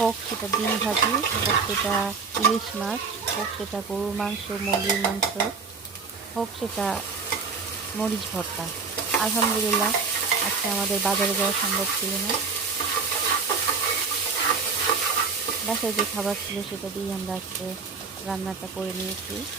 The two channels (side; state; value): left; quieter; 5.1 dB